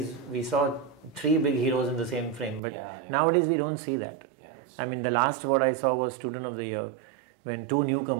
we saw 3 big heroes in the same frame, but nowadays we don't see that. Yeah, that's. I mean, the last what I saw was Student of the Year, when 2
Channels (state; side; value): drops out; left; at 2.6 s